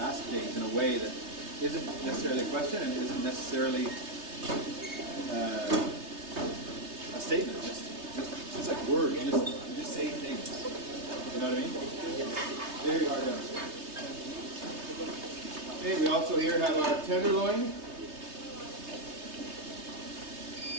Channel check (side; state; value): left; late; 3.2 ms